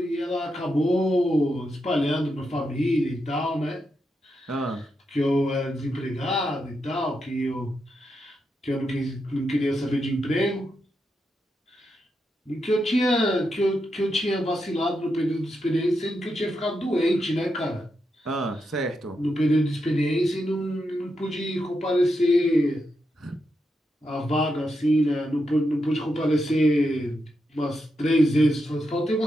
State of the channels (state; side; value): normal; both; correlation 0.85